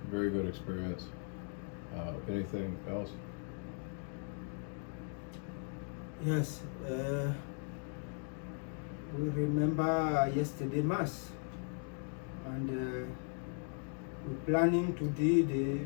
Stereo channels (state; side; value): silent; right; 52 dB below the other